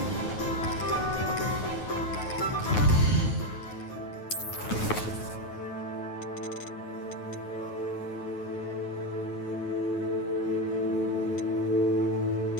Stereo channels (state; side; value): late; right; 9.4 ms